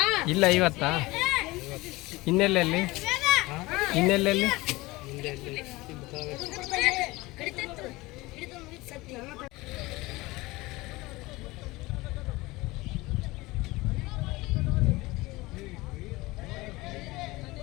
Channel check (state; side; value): quieter; right; 21.1 dB